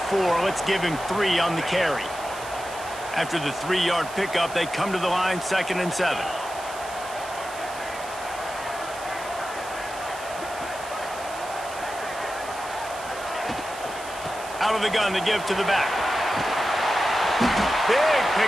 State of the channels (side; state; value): right; noise; hiss, 15 dB below the sound